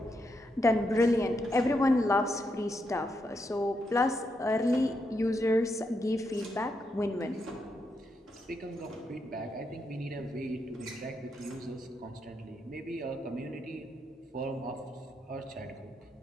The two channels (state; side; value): normal; both; correlation 0.81